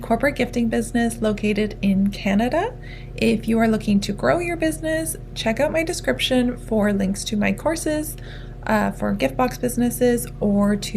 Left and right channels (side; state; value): both; identical; correlation 1.00